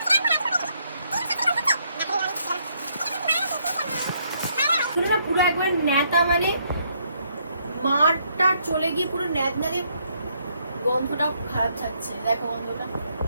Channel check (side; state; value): both; inverted; correlation -0.72